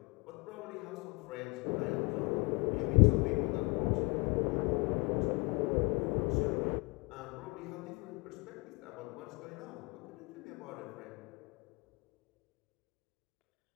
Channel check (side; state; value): right; quieter; 29.0 dB